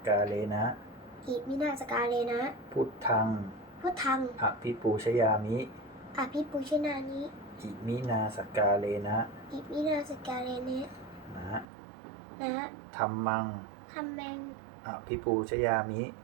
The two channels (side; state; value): left; drops out; at 11.7 s